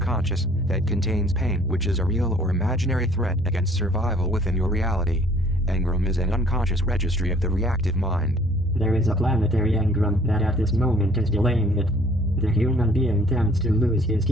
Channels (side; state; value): both; normal; correlation 0.57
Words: that contains pain, which is a real or imaginary threat against survival within your reality. Engram is an unconscious registry of the reactive mind. There is a planetary engram that at this moment is delaying it. The human being tends to lose his